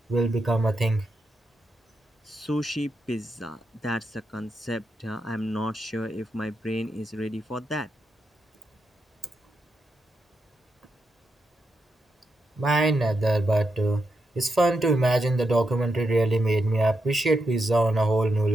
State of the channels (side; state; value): both; normal; correlation 0.85